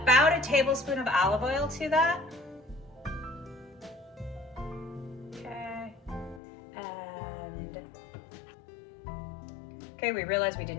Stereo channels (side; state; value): right; drops out; at 6.4 s